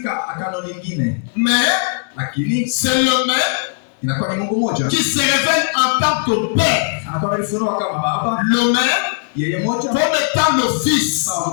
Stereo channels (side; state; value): right; silent; 67 dB below the other